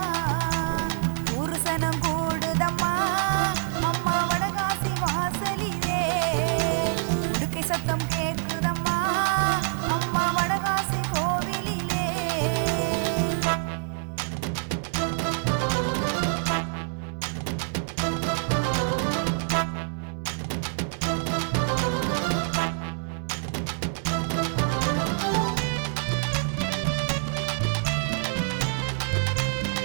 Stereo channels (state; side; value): silent; left; digital silence